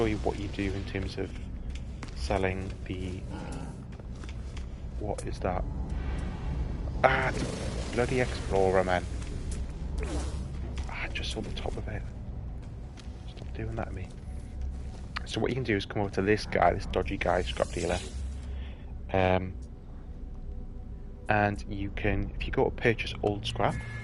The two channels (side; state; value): both; identical; correlation 1.00